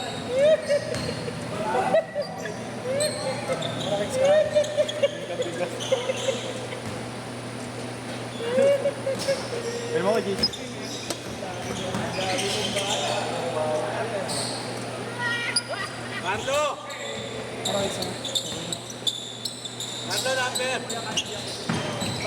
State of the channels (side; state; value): both; identical; correlation 1.00